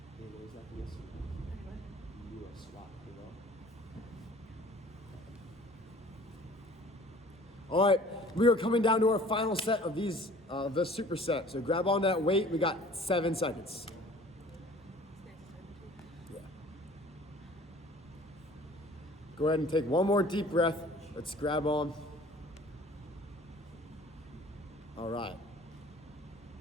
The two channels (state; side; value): normal; both; correlation 0.49